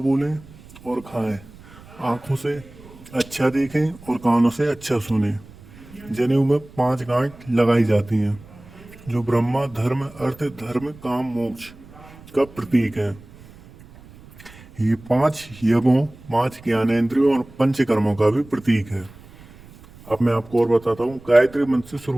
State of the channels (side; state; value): right; noise; rumble, 21 dB below the sound